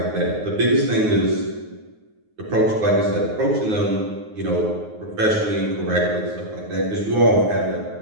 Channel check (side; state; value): left; late; 9.5 ms